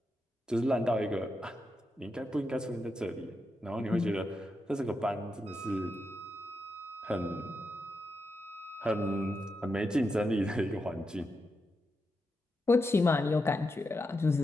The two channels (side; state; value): both; normal; correlation 0.86